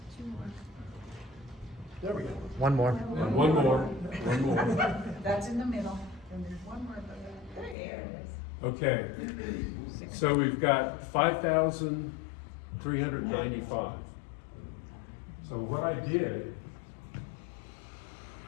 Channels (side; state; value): right; drops out; at 7.8 s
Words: There we go. One more. And one more. That's in the middle, and there's one more. There it is. Okay, so we've got 5,395. So what I did